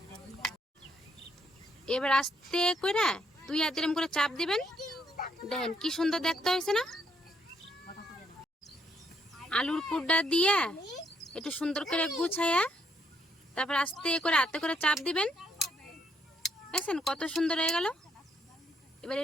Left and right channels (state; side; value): normal; both; correlation 0.72